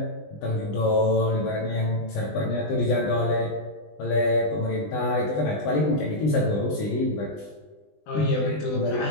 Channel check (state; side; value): late; right; 20 ms